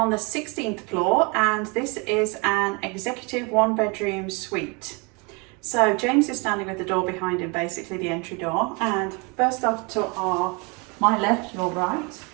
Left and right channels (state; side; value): quieter; left; 30.7 dB